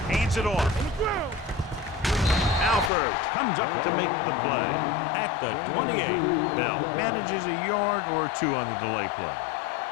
Hands it off. Alford comes up to make the play at the 28. Bell manages a yard or 2 on the delay play.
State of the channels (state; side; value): drops out; right; at 2.9 s